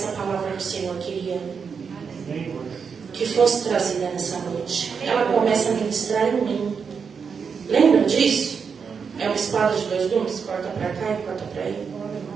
palavra que o Senhor queria que fosse trazida nessa noite. Ela começa a ministrar em mim. Lembra disso? É uma espada de dois gumes, corta para cá e corta para aí.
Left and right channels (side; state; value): left; quieter; 6.1 dB